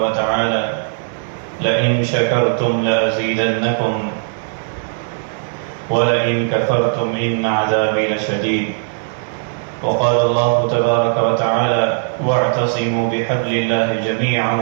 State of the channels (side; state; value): left; silent; 64 dB below the other